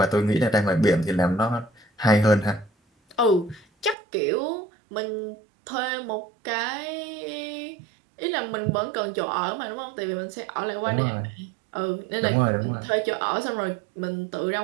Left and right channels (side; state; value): left; drops out; at 4.0 s